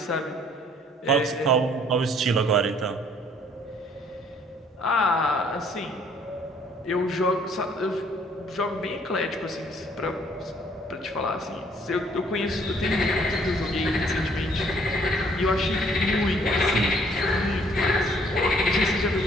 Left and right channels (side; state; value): both; normal; correlation 0.62